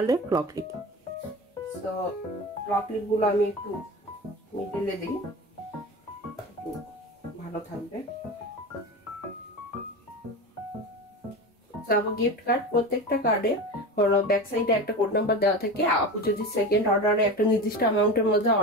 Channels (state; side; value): normal; both; correlation 0.28